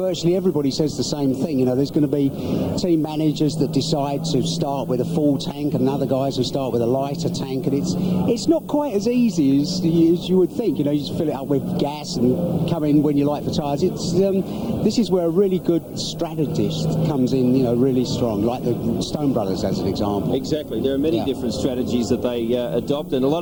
everybody says the same thing. You know, there's going to be team managers that decide to start with a full tank, and other guys who start with a lighter tank, and it's not quite as easy as you would think. You know, you just fill it up with gas and come in when you like the tyres. This is where a really good strategist comes in, you know, really strong, like the Stone Brothers as an example. Exactly. There are many different strategies that they adopt, and a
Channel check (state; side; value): identical; both; correlation 1.00